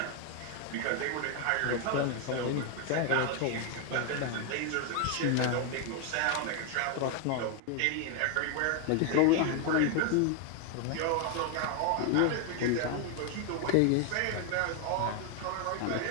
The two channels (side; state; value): both; different; correlation 0.01